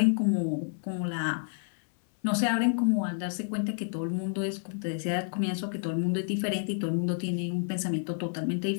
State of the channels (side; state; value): right; silent; 58 dB below the other